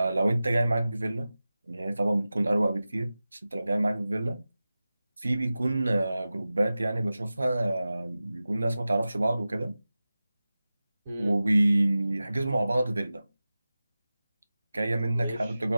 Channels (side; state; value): both; inverted; correlation -0.96